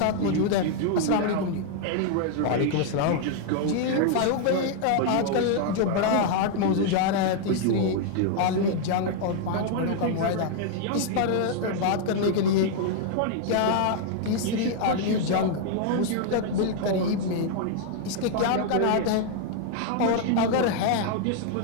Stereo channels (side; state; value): both; different; correlation 0.00